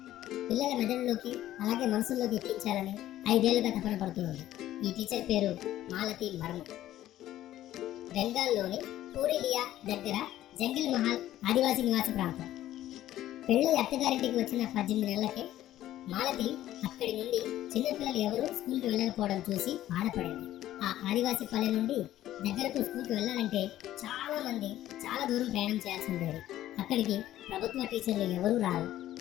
పిల్లల మెదడులోకి అలాగే మనసుల్లోకి ఎక్కించాలని 5 ఏళ్లుగా తపన పడుతుంది. ఈ టీచర్ పేరు మాలతి మర్ము. బెంగాల్లోని పూరిలియా దగ్గర జంగిల్ మహల్ ఆదివాసీ నివాస ప్రాంతం. పెళ్ళి అత్తగారింటికి వచ్చిన 18 నెలలకే మాలతి అక్కడి నుండి చిన్నపిల్లలు ఎవరు స్కూల్కి వెళ్ళకపోవడం చూసి బాధపడింది. ఆ ఆదివాసీ పల్లె నుండి దగ్గరకు స్కూల్కి వెళ్ళాలంటే చాలా దూరం ప్రయాణం చేయాల్సి ఉండేది. అక్కడికి ప్రభుత్వ టీచర్లు ఎవరూ రారు.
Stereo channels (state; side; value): quieter; right; 13.5 dB